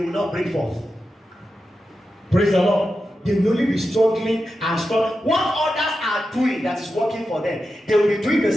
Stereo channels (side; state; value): both; normal; correlation 0.90